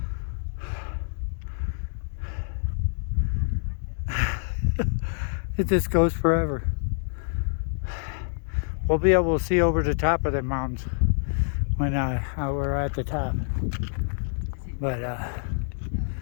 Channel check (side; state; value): right; silent; digital silence